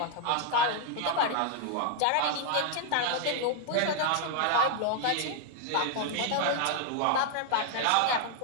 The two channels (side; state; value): both; different; correlation 0.00